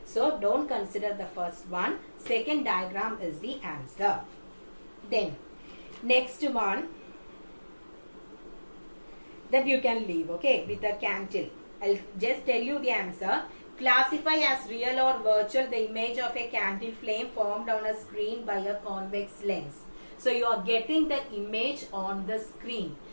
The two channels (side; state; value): both; inverted; correlation -1.00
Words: So don't consider the first one. Second diagram is the answer. Then next one that you can leave, okay, with a candle. I'll just tell you the answer. Classify as real or virtual the image of a candle flame formed on a screen by a convex lens. So you are getting the image on the screen.